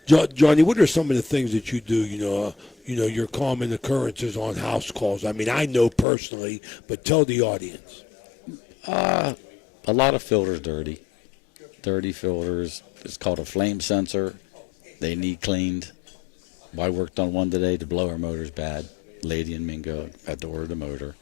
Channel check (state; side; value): drops out; right; at 6.1 s